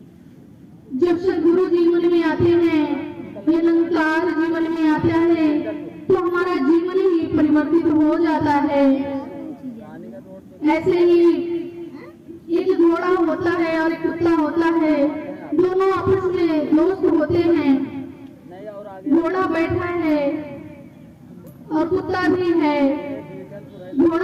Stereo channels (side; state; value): both; identical; correlation 1.00